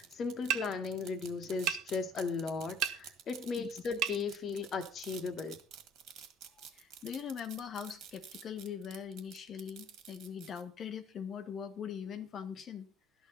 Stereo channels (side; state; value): both; normal; correlation 0.55